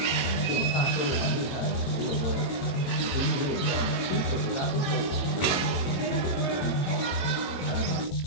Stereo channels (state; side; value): late; right; 22 ms